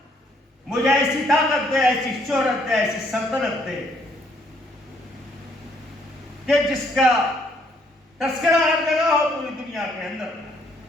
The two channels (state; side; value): normal; both; correlation 0.67